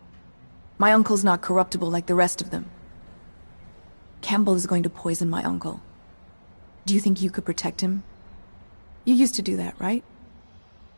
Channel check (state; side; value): inverted; both; correlation -1.00